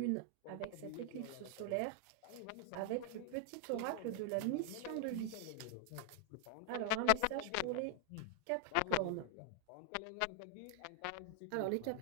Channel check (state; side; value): different; both; correlation 0.00